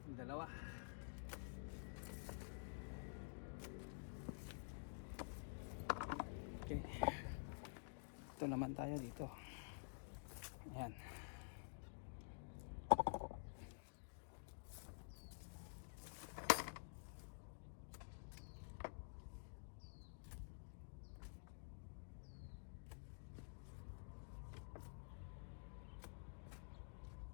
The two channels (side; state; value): right; silent; digital silence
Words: dalawa. Okay. Ito naman tayo dito. Ayan.